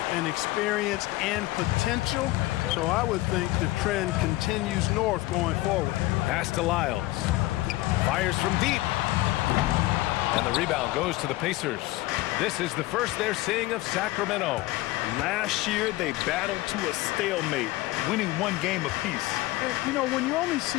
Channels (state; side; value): quieter; right; 18.7 dB